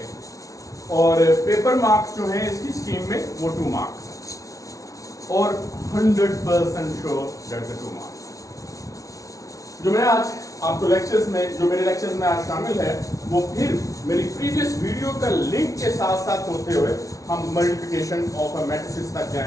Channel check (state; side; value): late; right; 0.17 ms